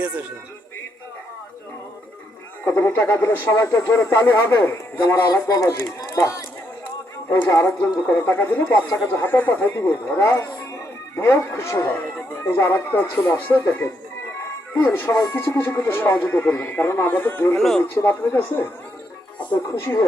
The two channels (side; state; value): both; normal; correlation 0.77